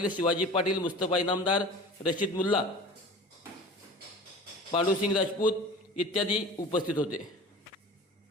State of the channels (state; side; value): normal; both; correlation 0.39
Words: शिवाजी पाटील, मुस्तफा इनामदार, रशीद मुल्ला, पांडुसिंग राजपूत इत्यादी उपस्थित होते।